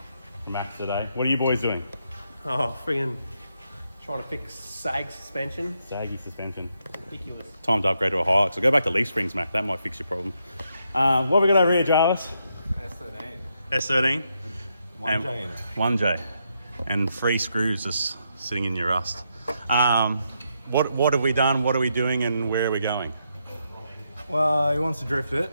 for Mac today. What are you boys doing? Oh, friggin' trying to fix sag suspension. Saggy suspension. Ridiculous. Time to upgrade to a Hilux. So go back to leaf springs, Mac. That might fix your problem. What have we got over here, Jarvis? S13. S13. 1J in it. 1J. And 3 screws just sitting in your rust. What have we done? What are we doing? And where are we going? Well, he wants to drift it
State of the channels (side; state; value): both; inverted; correlation -0.80